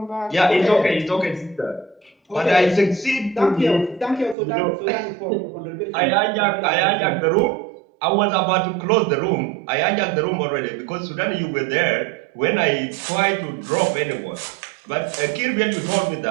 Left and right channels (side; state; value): left; drops out; at 4.4 s